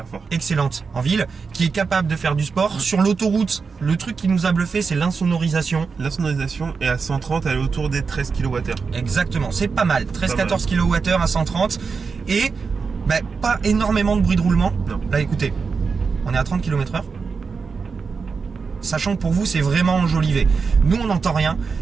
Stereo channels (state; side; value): quieter; left; 5.1 dB